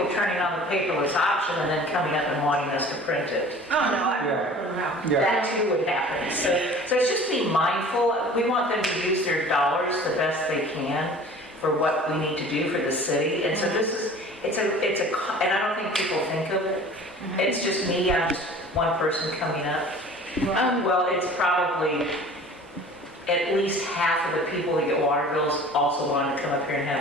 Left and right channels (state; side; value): normal; both; correlation 0.44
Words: turning on the paperless option and then coming up and wanting us to print it. Oh, no, I Yeah. don't know. Yeah. That too would happen. So it's just be mindful. We want them to use their dollars the best they can for what we need to do for the city. And so this is, and I don't think people think of it. It's just me, I'm just one person coming up. Well, it's probably at least half of the people that get water bills also want to come up here and